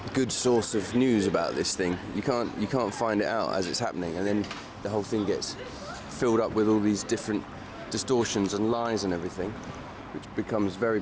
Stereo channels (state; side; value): identical; both; correlation 1.00